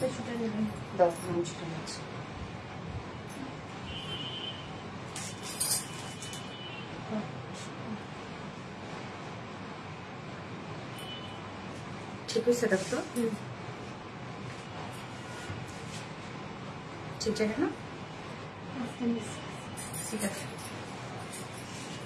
ঠিক হয়েছে দেখো ঠিক আছে না ঠিক আছে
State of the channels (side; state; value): both; identical; correlation 1.00